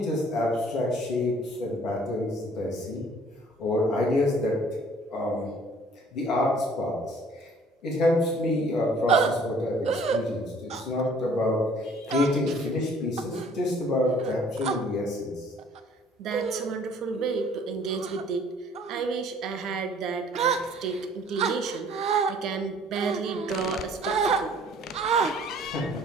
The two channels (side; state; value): both; normal; correlation 0.56